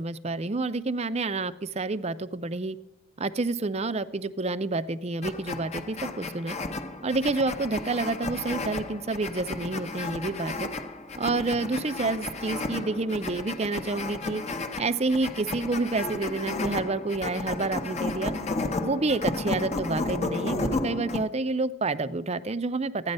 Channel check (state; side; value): normal; both; correlation 0.41